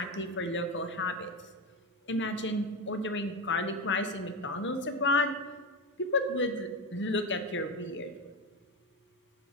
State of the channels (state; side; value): normal; both; correlation 0.16